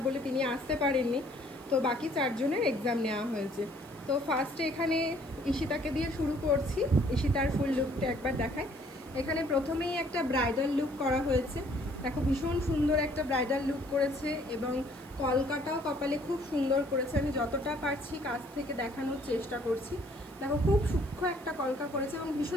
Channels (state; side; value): noise; right; hiss, 24 dB below the sound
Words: বলে তিনি আসতে পারেননি, তো বাকি 4জনের এক্সাম নেওয়া হয়েছে। তো ফার্স্টে এখানে ঈশিতাকে দিয়ে শুরু করছি। ঈশিতার ফুল লুকটা একবার দেখায়। এখানে প্রথমেই একটা ব্রাইডাল লুক করা হয়েছে। দেখো ভীষণ সুন্দর একটা ব্রাইডাল লুক করেছে, এবং কলকাটাও কপালে খুব সুন্দর করেছে। আমি যতটা পারছি কাছ থেকে দেখানোর চেষ্টা করছি। দেখো খুব সূক্ষ্ম একটা কলকা করেছে এবং